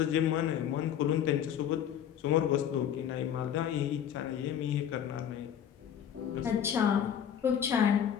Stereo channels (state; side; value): quieter; right; 9.3 dB